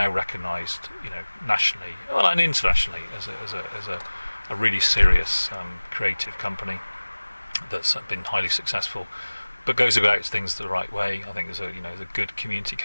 recognised, nationally, and internationally, as a really serious creative company that's been highly successful, but goes about things the right way. I think there's a good community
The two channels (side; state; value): both; inverted; correlation -1.00